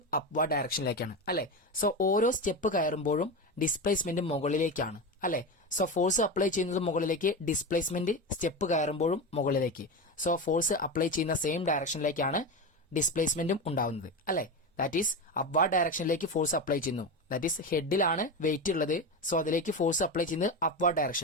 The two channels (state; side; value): normal; both; correlation 0.19